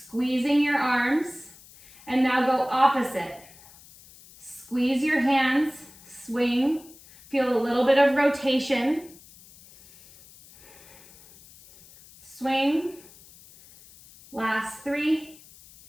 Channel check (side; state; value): left; noise; hiss, 23 dB below the sound